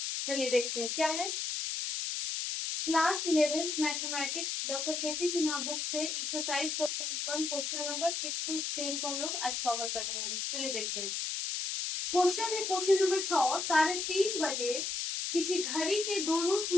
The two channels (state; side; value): noise; left; hiss, 2 dB below the sound